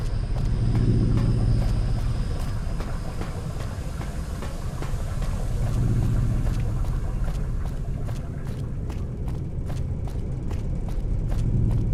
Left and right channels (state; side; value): identical; both; correlation 1.00